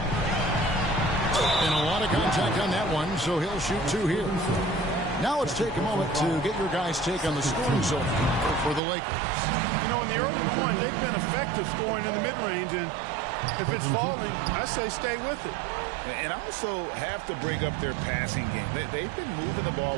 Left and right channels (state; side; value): drops out; left; at 8.8 s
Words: a lot of contact on that one, so he'll shoot 2 here. Now let's take a moment to get your guys' take on the scoring zone for the Lakers. You know, in the early going, they've been effective scoring in the mid-range, and if it's falling, I say stay with it. And also have to bring up their passing game. They've been moving the ball